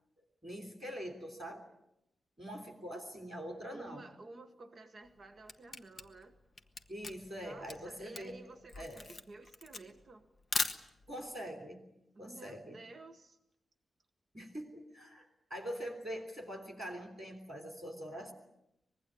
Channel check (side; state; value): both; normal; correlation 0.83